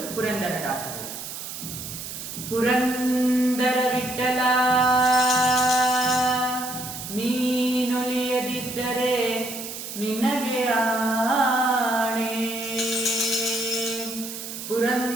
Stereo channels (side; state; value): right; noise; hiss, 9 dB below the sound